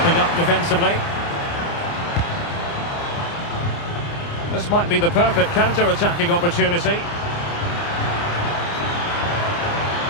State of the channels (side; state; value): right; late; 29 ms